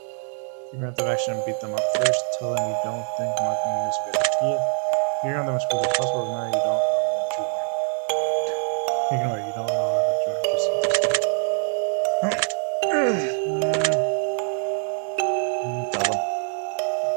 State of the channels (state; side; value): silent; left; 55 dB below the other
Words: Figure out the action and beat them up first. Tell them you don't think marking is a good idea. Figure on them as quickly as possible. Now you don't know what you want. Ignore it. You don't know what you want. Just tell them.